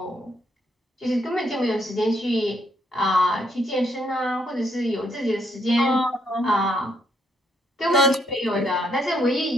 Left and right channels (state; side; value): normal; both; correlation 0.73